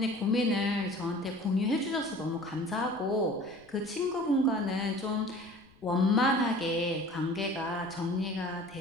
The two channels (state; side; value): noise; left; rumble, 28 dB below the sound